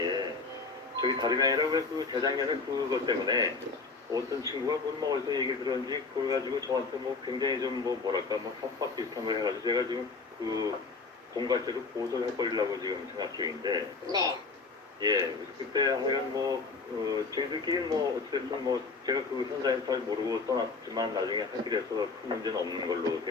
저기 다름이 아니라 왜 그 재작년에 그것 때문에 어떤 친구가 뭐 어디서 얘기를 들었는지 그걸 가지고 저한테 뭐 굉장히 좀 뭐랄까 협박 비슷한 걸 해가지고 제가 지금 그 공갈죄로 고소를 해버리려고 지금 생각 중인데. 네. 예. 그때 하여간 저희들끼리 어쨌든 제가 그 현장에서 잘 모르고 떠났지만 나중에 하기로 해서 큰 문제는 없는 걸로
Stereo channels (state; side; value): quieter; right; 4.2 dB